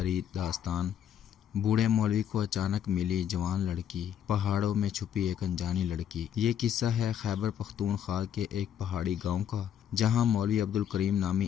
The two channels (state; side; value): quieter; right; 9.4 dB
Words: داستان۔ بوڑھے مولوی کو اچانک ملی جوان لڑکی، پہاڑوں میں چھپی ایک انجانی لڑکی۔ یہ قصہ ہے خیبر پختونخوا کے ایک پہاڑی گاؤں کا، جہاں مولوی عبدالکریم نامی